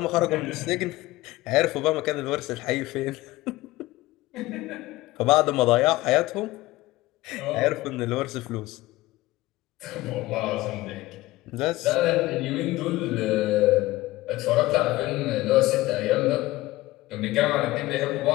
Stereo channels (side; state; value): right; quieter; 18.4 dB